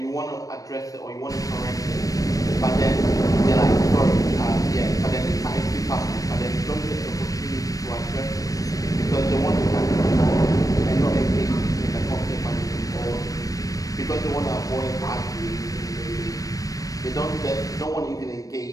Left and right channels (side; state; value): right; late; 0.17 ms